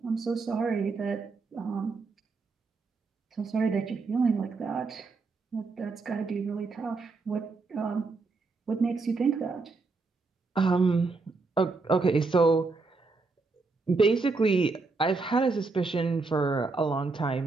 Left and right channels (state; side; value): quieter; left; 4.0 dB